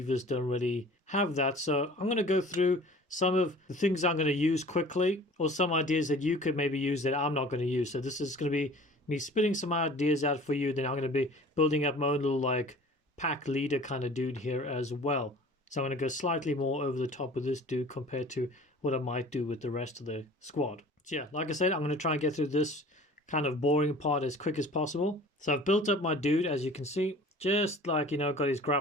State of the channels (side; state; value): both; normal; correlation 0.45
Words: don't really have that. So I'm going to go through some of the things I'm going to use quickly, or some ideas that you could maybe use that I'm not going to use. So this is going to be me spitting some ideas out for you. Then I'm going to be building up my own little like pack leader kind of dude here as well. So I'm going to go slightly more over the top with this dude compared to what I might do with the rest of the squad. So yeah, like I said, I'm going to try and get through this kind of boring part as quick as possible. So I've built up my dude, as you can see, just like, you know, got his